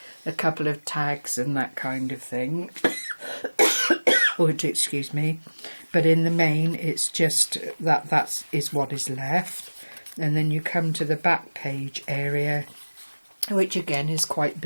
a couple of tags and that kind of thing. Excuse me. But in the main, it's just that is what is left. And then you come to the back page area, which again is quite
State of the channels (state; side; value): inverted; both; correlation -1.00